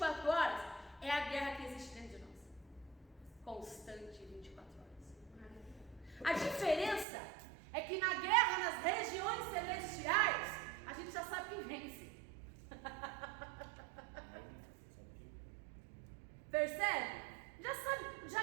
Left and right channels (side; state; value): left; drops out; at 7.1 s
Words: horas, é a guerra que existe dentro de nós. Constante, 24 horas. A diferença é que na guerra, nas regiões celestiais, a gente já sabe quem vence. Percebe? Já sabe,